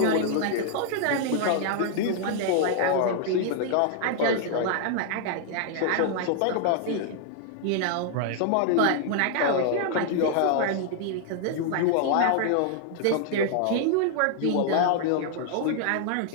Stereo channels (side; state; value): both; different; correlation 0.00